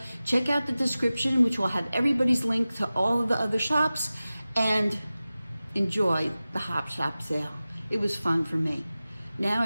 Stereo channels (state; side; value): inverted; both; correlation -0.96